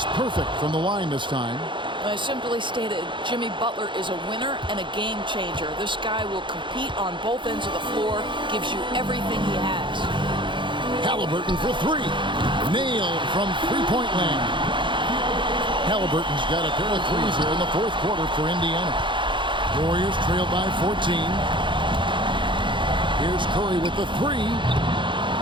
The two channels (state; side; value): late; left; 0.23 ms